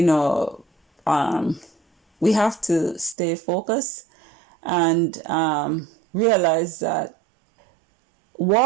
have to stay focused and realize that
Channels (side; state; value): left; drops out; at 3.2 s